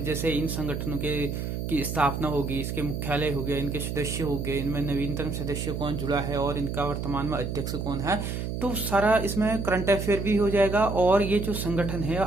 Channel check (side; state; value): right; noise; hum, 4 dB below the sound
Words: जैसे इन संगठनों के की स्थापना होगी, इसके मुख्यालय हो गए, इनके सदस्य हो गए, इनमें नवीनतम सदस्य कौन जुड़ा है और इनका वर्तमान में अध्यक्ष कौन है, तो सारा इसमें करंट अफेयर भी हो जाएगा। और ये जो संगठन है